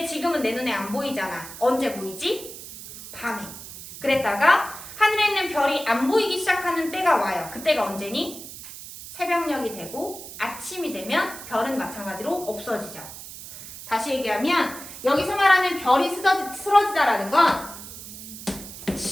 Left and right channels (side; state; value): right; noise; hiss, 13 dB below the sound